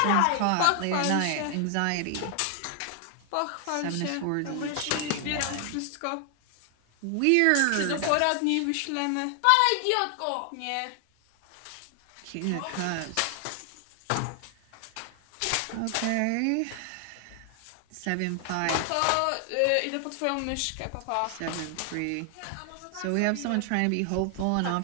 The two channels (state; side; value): different; both; correlation 0.00